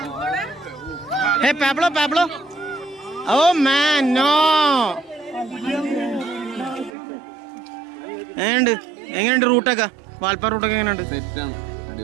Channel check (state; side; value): drops out; left; at 6.9 s